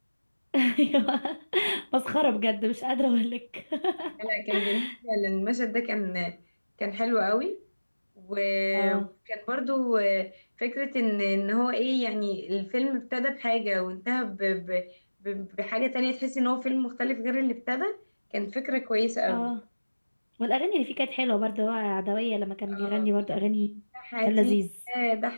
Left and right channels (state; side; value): inverted; both; correlation -1.00